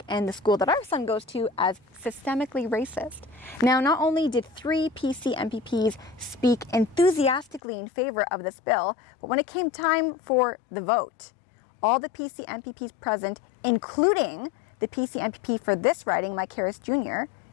and the school that our son goes to as systemically racist. Now, not only did 3 PC MPPs speak enthusiastically in favor of this bill, but when it came time for the vote, all the PC MPPs present, including the PC MPP for this riding, Mike Harris Jr.,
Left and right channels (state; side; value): drops out; right; at 7.6 s